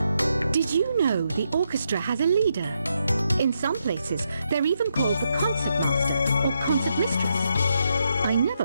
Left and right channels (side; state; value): both; inverted; correlation -0.81